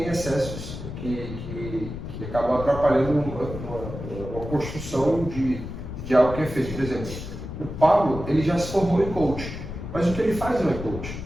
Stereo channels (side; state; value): left; noise; rumble, 9 dB below the sound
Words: excessos que acabam atrapalhando uma construção de algo que é feito. Por exemplo, o Pablo, ele já se formou em coach, mas o que ele faz não é coach.